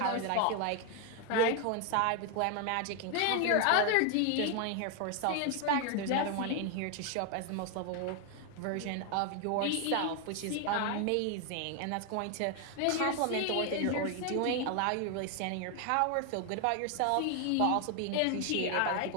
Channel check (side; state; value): both; different; correlation 0.01